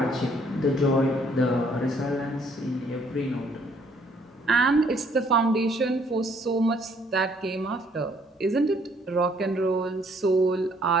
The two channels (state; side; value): normal; both; correlation 0.64